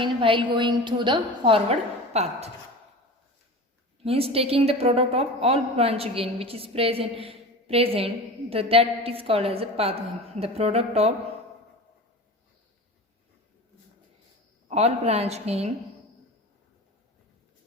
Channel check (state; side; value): normal; both; correlation 0.33